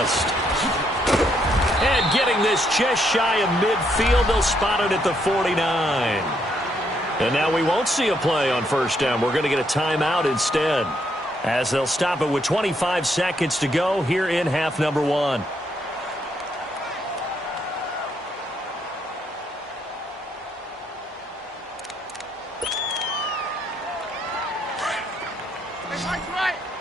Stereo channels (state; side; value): normal; both; correlation 0.74